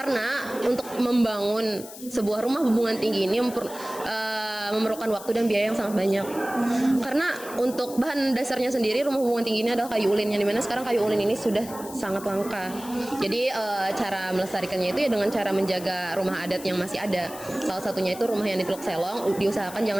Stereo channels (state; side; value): noise; left; hiss, 15 dB below the sound